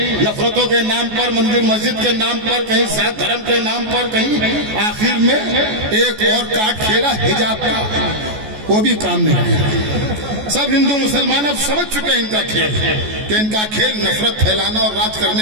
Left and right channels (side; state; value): left; late; 14 ms